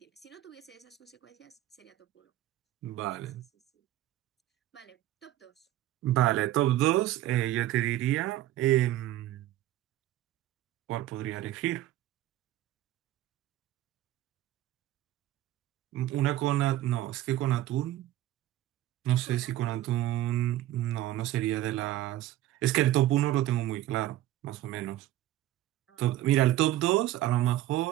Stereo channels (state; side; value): quieter; left; 14.3 dB